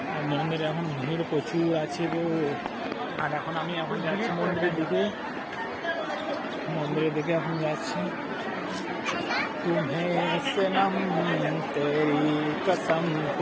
মন্দিরে এখন ভিড় প্রচুর আছে গো। আর এখন আমি যাচ্ছি মন্দিরের দিকে এখন যাচ্ছি। तुम्हें सनम तेरी कसम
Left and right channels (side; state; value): both; identical; correlation 1.00